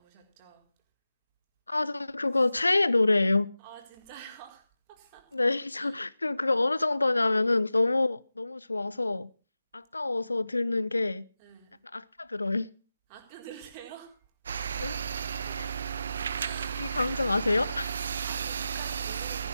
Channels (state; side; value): inverted; both; correlation -0.94